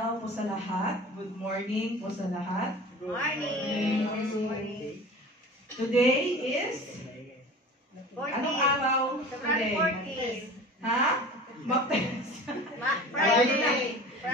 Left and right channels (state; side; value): normal; both; correlation 0.38